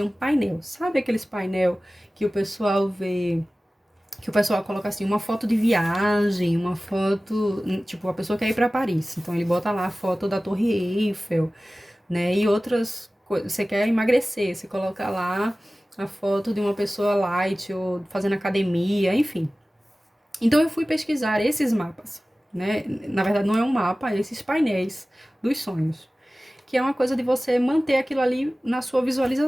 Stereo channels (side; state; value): both; normal; correlation 0.97